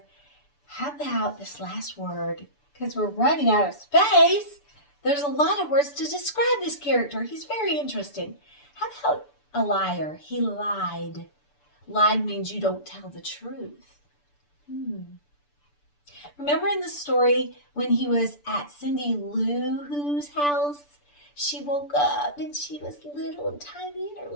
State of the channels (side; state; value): right; late; 6.9 ms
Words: How about this last word? Because we're running out of space. There's a lot of words to describe this character. He's very interesting. How about a liar? He lied. Lied means you don't tell the truth. Remember in the story when he was at Cindy Lou Who's house? She woke up and she was little and tiny and her